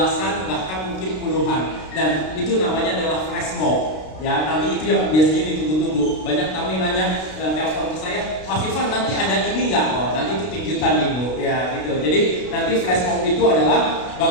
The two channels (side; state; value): right; late; 32 ms